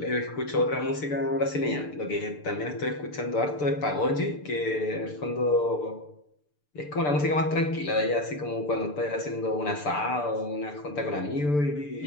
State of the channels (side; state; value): right; late; 6.8 ms